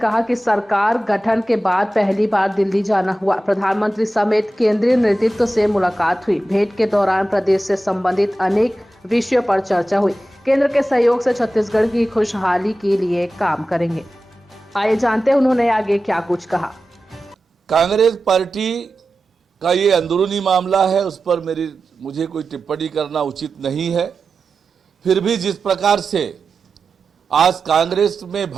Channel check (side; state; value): both; normal; correlation 0.93